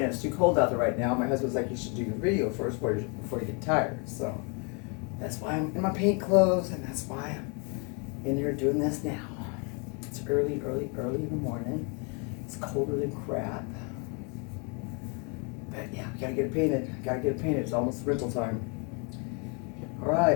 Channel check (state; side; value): quieter; right; 34.9 dB